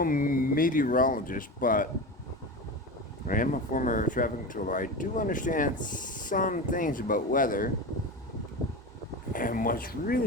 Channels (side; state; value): both; normal; correlation 0.25